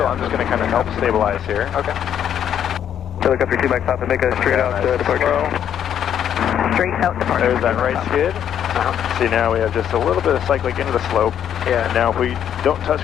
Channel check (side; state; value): right; quieter; 9.5 dB